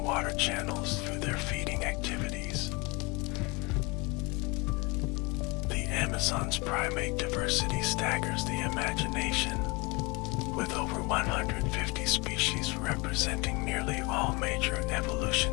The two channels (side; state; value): right; quieter; 27.1 dB